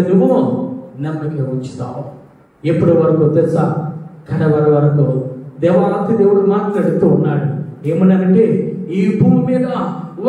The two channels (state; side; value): identical; both; correlation 1.00